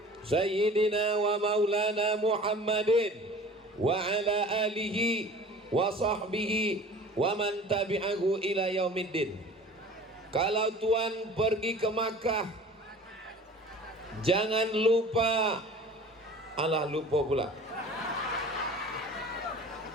Sayyidina wa maulana Muhammadin wa ala alihi wa sahbihi wa man tabi'ahu ila yaumiddin. Kalau tuan pergi ke Makkah, jangan lupa, alah lupa pula.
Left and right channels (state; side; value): normal; both; correlation 0.43